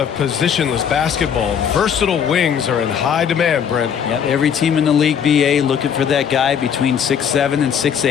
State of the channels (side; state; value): right; quieter; 7.9 dB